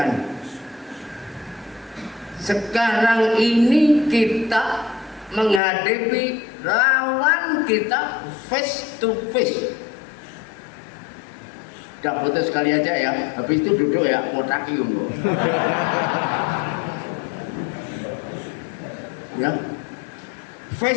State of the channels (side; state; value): right; drops out; at 5.6 s